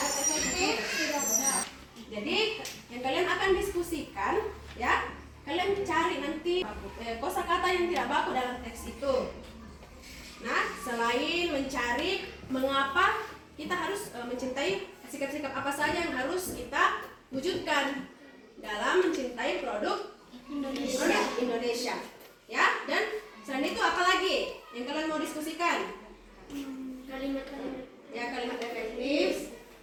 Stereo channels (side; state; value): both; identical; correlation 1.00